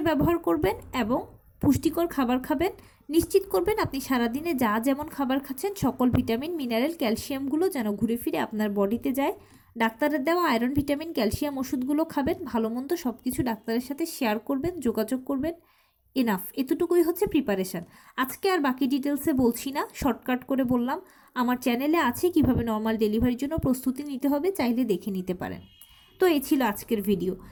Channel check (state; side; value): identical; both; correlation 1.00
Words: ব্যবহার করবেন এবং পুষ্টিকর খাবার খাবেন। নিশ্চিত করবেন আপনি সারাদিনে যা যেমন খাবার খাচ্ছেন সকল ভিটামিন, মিনারেল, ক্যালসিয়ামগুলো যেন ঘুরে ফিরে আপনার বডিতে যায়। ডাক্তারের দেওয়া আয়রন, ভিটামিন, ক্যালসিয়াম ওষুধগুলো খাবেন। ভালো মন্দ সব কিছু ডাক্তারের সাথে শেয়ার করবেন, যোগাযোগ করবেন। এনাফ, এতটুকুই হচ্ছে প্রিপারেশান। আজকে আর বাকি ডিটেলসে বলছি না, শর্টকাট করে বললাম। আমার চ্যানেলে আছে কিভাবে নর্মাল ডেলিভারির জন্য প্রস্তুতি নিতে হবে, চাইলে দেখে নিতে পারেন। তো এই ছিল আজকের ভিডিও।